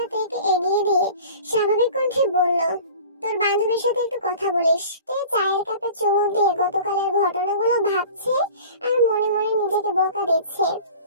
তেকে এগিয়ে দিয়ে স্বাভাবিক কণ্ঠে বলল, তোর বান্ধবীর সাথে একটু কথা বলিস। তে চায়ের কাপে চুমুক দিয়ে গতকালের ঘটনাগুলো ভাবছে আর মনে মনে নিজেকে বকা দিচ্ছে।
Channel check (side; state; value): both; inverted; correlation -0.42